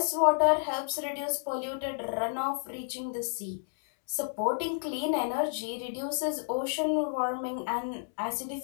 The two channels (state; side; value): silent; right; digital silence